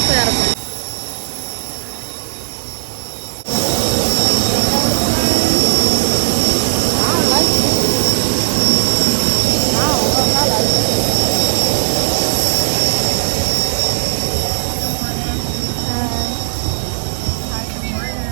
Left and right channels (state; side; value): silent; left; digital silence